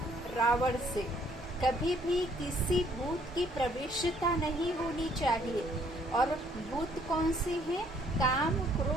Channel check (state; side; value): normal; both; correlation 0.64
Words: रावण से कभी भी किसी भूत की प्रवेशता नहीं होनी चाहिए। और भूत कौन से हैं? काम,